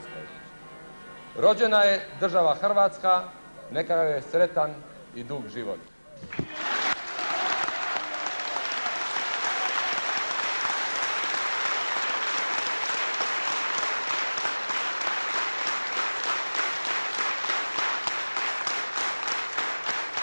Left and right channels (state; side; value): inverted; both; correlation -1.00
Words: Rođena je država Hrvatska, neka joj je sretan i dug život.